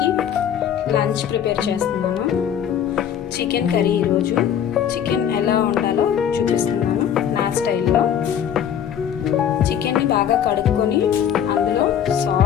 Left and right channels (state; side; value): quieter; right; 9.1 dB